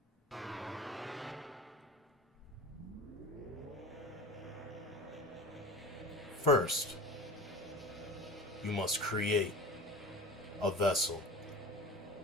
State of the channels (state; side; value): normal; both; correlation 0.35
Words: First, you must create a vessel.